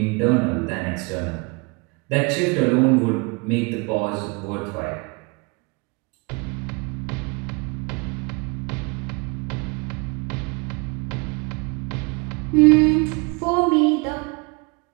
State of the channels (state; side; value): quieter; left; 29.9 dB